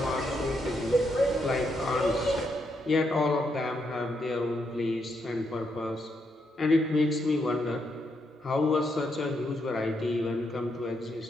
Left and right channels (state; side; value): normal; both; correlation 0.79